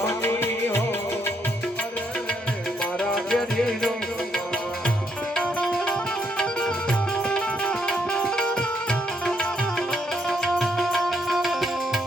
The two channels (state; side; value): normal; both; correlation 0.74